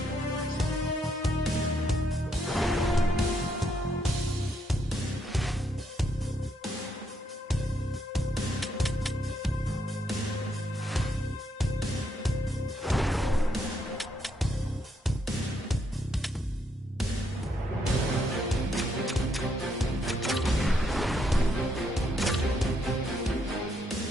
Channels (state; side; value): normal; both; correlation 0.75